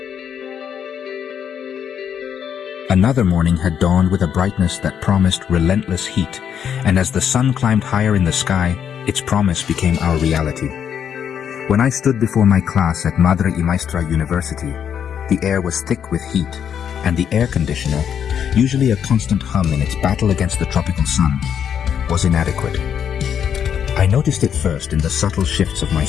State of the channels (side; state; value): right; quieter; 8.4 dB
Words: Another morning had dawned with a brightness that promised relentless heat, and as the sun climbed higher in the sky, its promise became our reality. When I stood before my class at Madre y Maestra University, the air was thick with heat, and the air conditioner, usually a constant hum in its battle against the tropical sun, was inadequate. I noticed it first in the subtle shifts of my